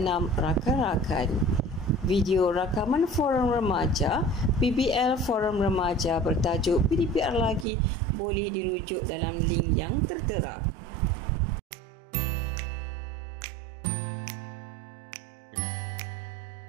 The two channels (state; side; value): drops out; left; at 7.7 s